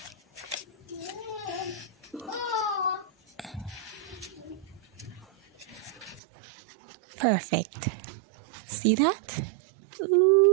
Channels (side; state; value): left; drops out; at 6.2 s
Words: Perfect. See that?